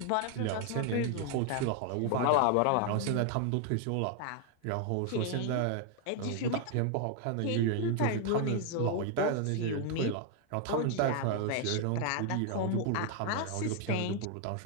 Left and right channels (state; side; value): different; both; correlation 0.00